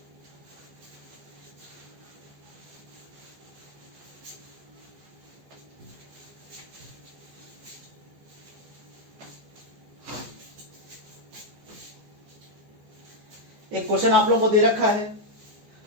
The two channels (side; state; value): left; late; 14 ms